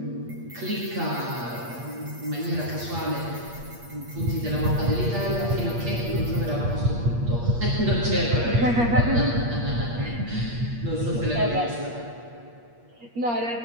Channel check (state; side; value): late; left; 8.5 ms